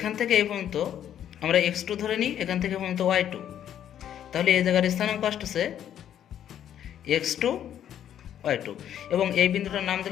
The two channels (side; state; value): right; quieter; 10.2 dB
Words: থেকে এই পর্যন্ত আমরা x2 ধরে নিই, এখান থেকে পর্যন্ত y2, তাহলে এই জায়গার স্থানাঙ্ক আসতেছে x2 y2 এবং এই বিন্দুটার নাম